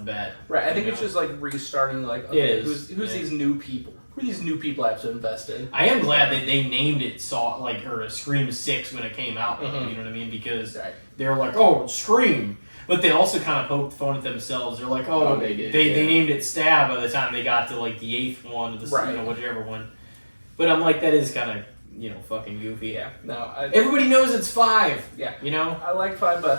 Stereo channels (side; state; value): both; inverted; correlation -1.00